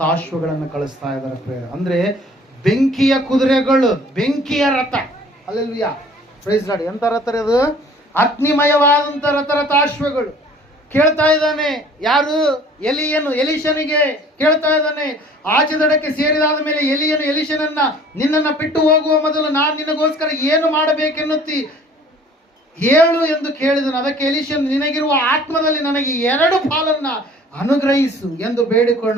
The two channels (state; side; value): normal; both; correlation 0.51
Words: ಕಳಿಸ್ತಾ ಇದಾರೆ ಪ್ರಿಯರೇ. ಅಂದ್ರೆ ಬೆಂಕಿಯ ಕುದುರೆಗಳು, ಬೆಂಕಿಯ ರಥ. ಹಲ್ಲೆಲೂಯಾ. Praise Lord. ಎಂತ ರಥ ಅದು? ಅಗ್ನಿಮಯವಾದಂತ ರಥಾಶ್ವಗಳು. ಕೇಳ್ತಾ ಇದ್ದಾನೆ ಯಾರು? ಎಲೀಷನಿಗೆ ಕೇಳ್ತಾ ಇದ್ದಾನೆ. ಆಚೆ ದಡಕ್ಕೆ ಸೇರಿದಾದ ಮೇಲೆ ಎಲೀಷನನ್ನ ನಿನ್ನನ್ನ ಬಿಟ್ಟು ಹೋಗುವ ಮೊದಲು ನಾನು ನಿನಗೋಸ್ಕರ ಏನು ಮಾಡಬೇಕೆನ್ನುತ್ತಿ ಹೇಳು ಎಂದು ಕೇಳಿದನು. ಅದಕ್ಕೆ ಎಲೀಷನ್, ನಿನಗಿರುವ ಆತ್ಮದಲ್ಲಿ ನನಗೆ 2 ಪಾಲನ್ನ ಅನುಗ್ರಹಿಸು ಎಂದು